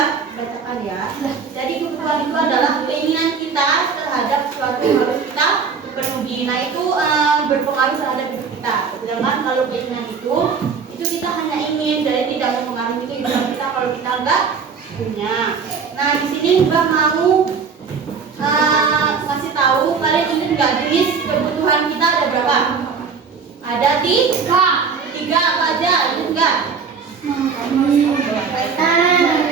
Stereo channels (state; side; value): quieter; left; 5.7 dB